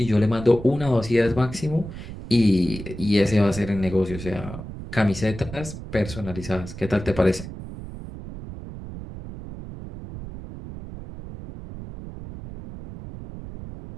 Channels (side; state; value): right; noise; rumble, 11 dB below the sound